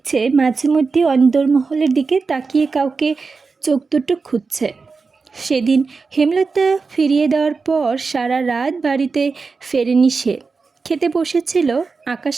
মাঝে মধ্যে অন্দরমহলের দিকে তাকিয়ে কাউকে চোখ দুটো খুঁজছে। সেদিন হেমলতা ফিরিয়ে দেওয়ার পর সারা রাত বাড়িতে ফেরেনি সে। খেতে বসেছিল, আকাশ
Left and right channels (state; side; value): quieter; left; 4.5 dB